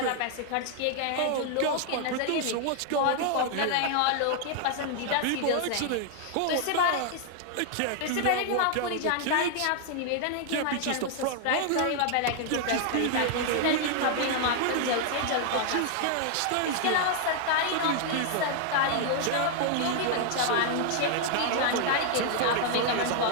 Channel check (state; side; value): different; both; correlation 0.00